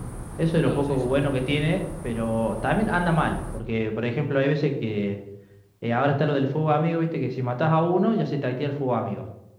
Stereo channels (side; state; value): both; identical; correlation 1.00